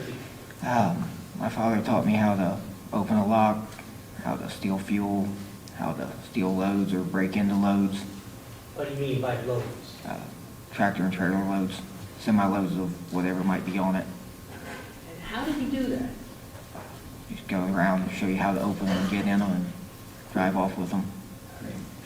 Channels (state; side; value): identical; both; correlation 1.00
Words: teaching. My father taught me how to open a lock, how to steal fuel, how to steal loads or break into loads, What do you mean by loads? tractor and trailer loads, semi-loads of whatever might be on it. And how did he do that? Just go around and show you how to open them and get in them and drive off with them.